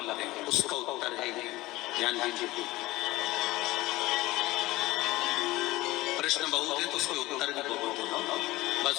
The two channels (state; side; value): quieter; right; 18.7 dB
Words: हैं? उसका उत्तर है, ध्यान दीजिए। प्रश्न बहुत है तो उसके उत्तर भी बहुत है,